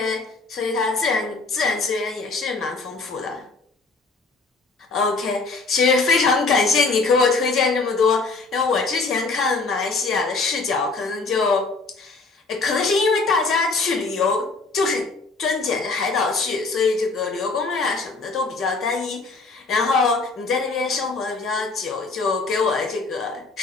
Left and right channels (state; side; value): quieter; right; 3.8 dB